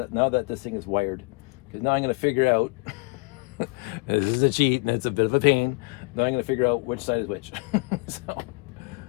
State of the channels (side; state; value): right; quieter; 30.0 dB